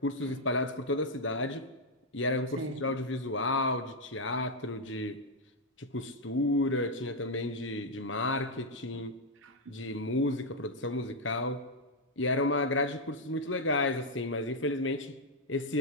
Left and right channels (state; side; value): normal; both; correlation 0.00